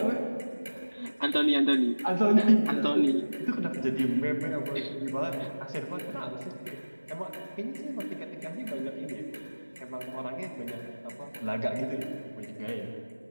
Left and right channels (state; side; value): inverted; both; correlation -1.00